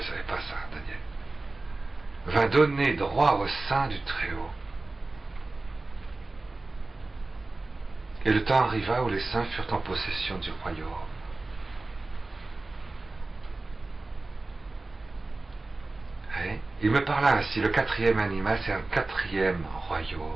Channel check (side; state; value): left; quieter; 3.2 dB